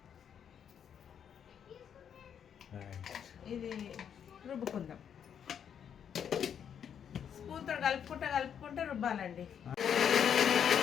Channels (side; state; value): right; quieter; 8.3 dB